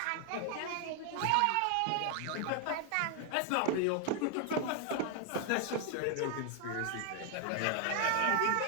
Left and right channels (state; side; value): different; both; correlation 0.00